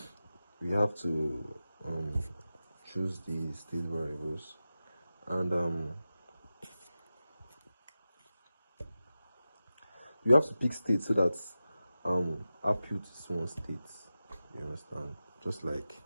we have to choose the state variables, and you have to pick state so that output is one state. You understand? Just like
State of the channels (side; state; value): both; inverted; correlation -0.93